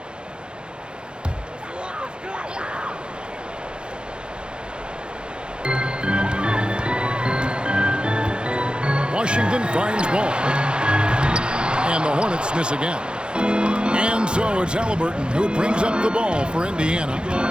Washington finds Ball. And the Hornets miss again. And so it's Halliburton who brings up the ball for Indiana.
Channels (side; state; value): left; late; 0.051 ms